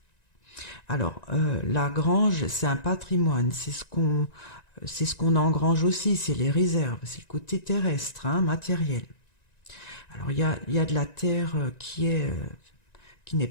Alors, la grange, c'est un patrimoine, c'est ce qu'on engrange aussi, c'est les réserves, c'est le côté terrestre, hein, matériel. Alors, il y a de la terre qui n'est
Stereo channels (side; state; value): right; late; 1.9 ms